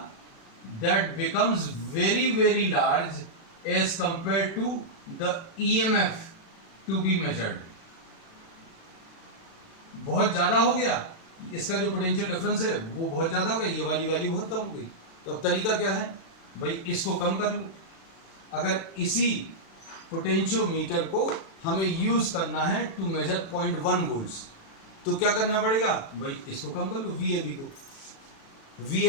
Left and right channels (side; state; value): right; late; 36 ms